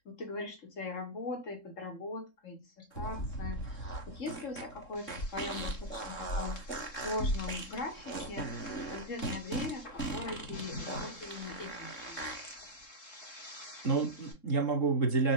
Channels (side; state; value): right; late; 3.7 ms